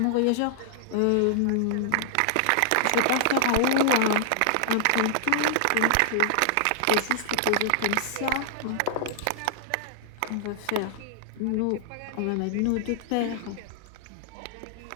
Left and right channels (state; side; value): different; both; correlation -0.01